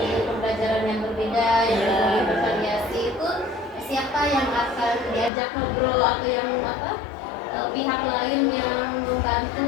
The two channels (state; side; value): drops out; right; at 5.3 s